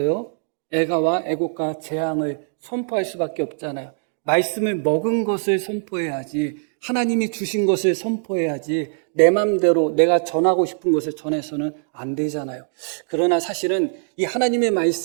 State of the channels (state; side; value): silent; left; 64 dB below the other